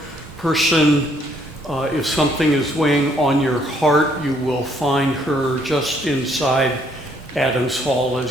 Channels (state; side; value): normal; both; correlation 0.67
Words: person. If something is weighing on your heart, you will find her just inside Adams Hall